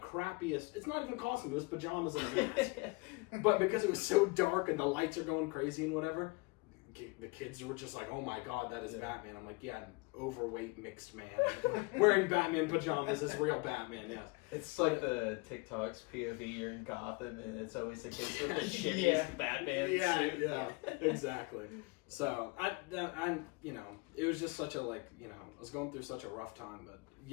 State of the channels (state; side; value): quieter; right; 26.8 dB